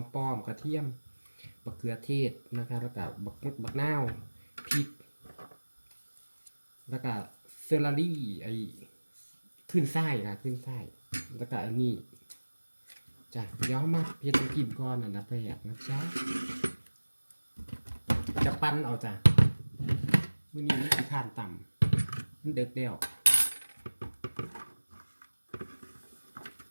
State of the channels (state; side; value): inverted; both; correlation -1.00